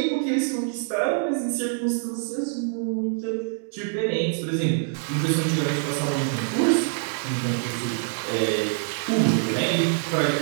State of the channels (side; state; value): left; silent; digital silence